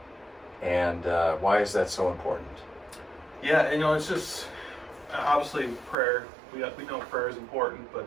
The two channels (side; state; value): left; drops out; at 6.0 s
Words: and why is that so important? Yeah, it's just obviously prayer. We know prayer is important, but